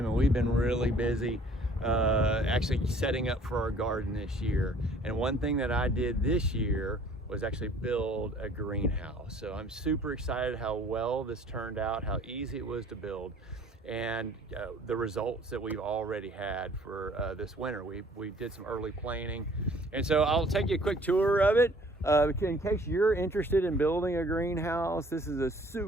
and we've been really busy actually setting up for our garden this year. And one thing that I did this year was actually build a greenhouse. So I'm super excited how well this turned out, how easy it was to build, and the results that we've already had for this winter. We did some early planting, and so I'll take you a quick tour of it. In case you're interested in building a greenhouse, this is a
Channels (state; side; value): normal; both; correlation 0.55